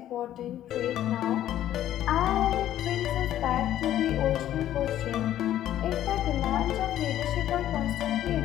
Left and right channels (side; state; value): right; quieter; 12.2 dB